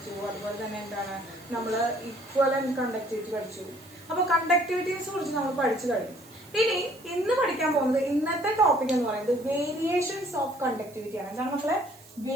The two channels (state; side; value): noise; right; hiss, 23 dB below the sound